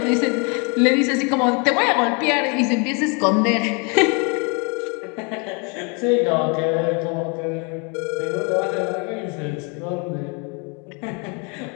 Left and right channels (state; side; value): quieter; right; 33.7 dB